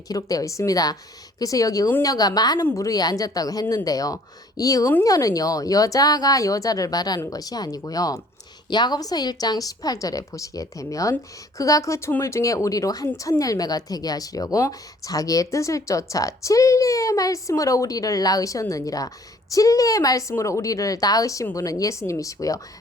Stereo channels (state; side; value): normal; both; correlation 0.57